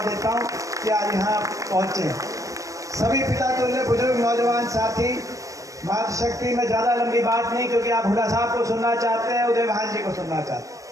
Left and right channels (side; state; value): left; late; 0.16 ms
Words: देता हूँ कि आज यहाँ पहुँचे। सभी पिता तुल्य बुजुर्ग नौजवान साथी, मातृशक्ति में ज़्यादा लंबी बात नहीं, क्योंकि आप हुड्डा साहब को सुनना चाहते हैं, उदय भान जी को सुनना चाहते